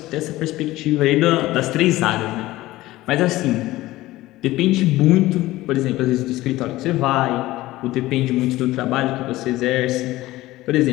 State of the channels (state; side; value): quieter; right; 17.4 dB